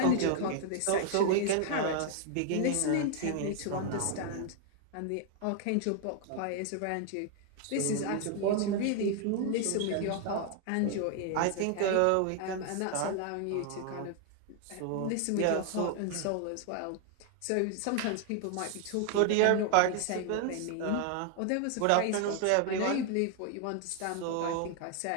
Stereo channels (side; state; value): both; different; correlation 0.00